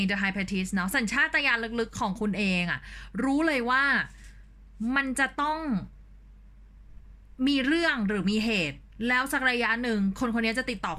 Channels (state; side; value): identical; both; correlation 1.00